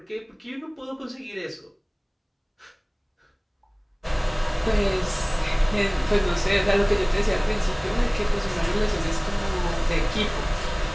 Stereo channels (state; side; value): identical; both; correlation 1.00